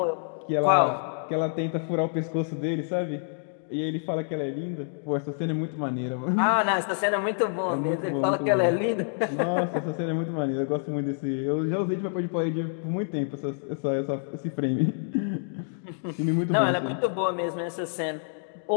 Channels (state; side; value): silent; right; digital silence